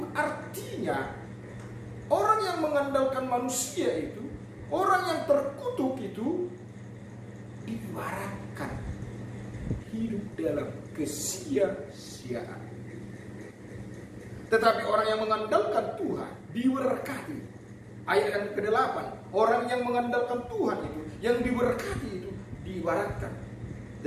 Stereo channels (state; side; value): identical; both; correlation 1.00